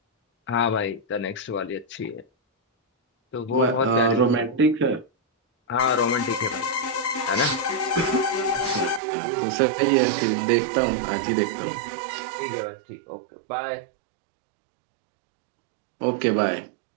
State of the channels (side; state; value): left; drops out; at 9.0 s